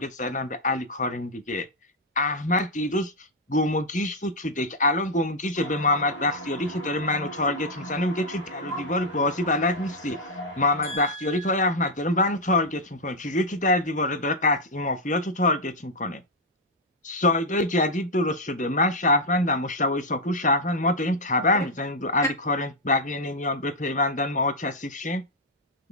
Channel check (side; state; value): both; normal; correlation -0.02